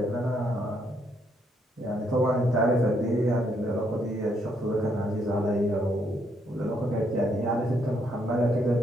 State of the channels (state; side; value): normal; both; correlation 0.73